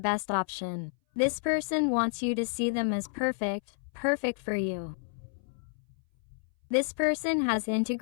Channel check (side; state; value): right; silent; 58 dB below the other